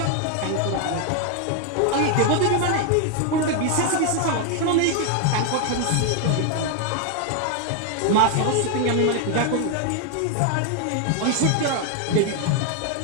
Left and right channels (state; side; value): different; both; correlation 0.01